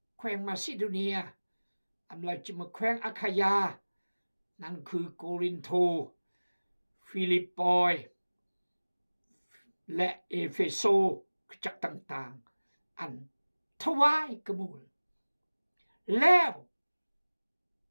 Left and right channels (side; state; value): both; inverted; correlation -1.00